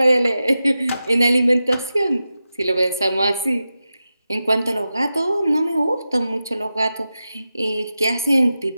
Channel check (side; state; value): both; inverted; correlation -0.92